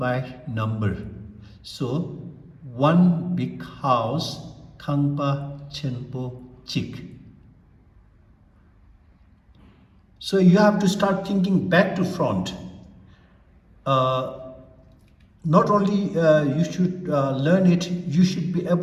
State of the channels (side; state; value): both; identical; correlation 1.00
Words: number. So one big house, Khangpa, Chenpo, Chik. So you have to start thinking back to front. Not only you should learn it, you should be